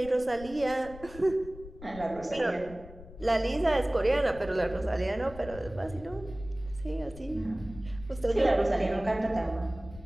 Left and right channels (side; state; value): left; noise; rumble, 16 dB below the sound